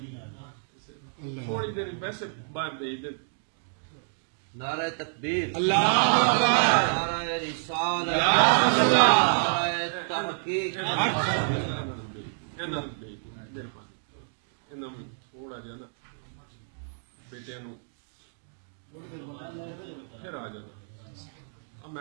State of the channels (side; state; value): left; silent; digital silence